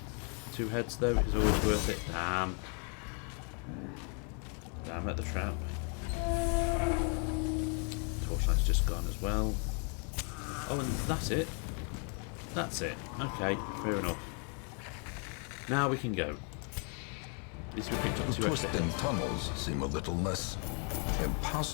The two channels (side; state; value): right; quieter; 39.5 dB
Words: 2 heads though is always worth it. Damn. Damn at the trap. Torchlight's just gone as well. Oh, and that's it. That's it. Okay, fair enough. Now we can go. At least we picked up The 2 extra. twisting tunnels seem a little less